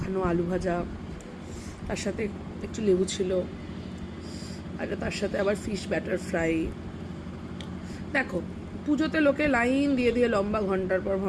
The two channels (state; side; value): identical; both; correlation 1.00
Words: আলু ভাজা, তার সাথে একটু লেবু ছিল, আর তার সাথে আবার ফিশ ব্যাটার ফ্রাই। দেখো, পুজোতে লোকে লাইন দিয়ে দিয়ে লম্বা ঘন্টার পর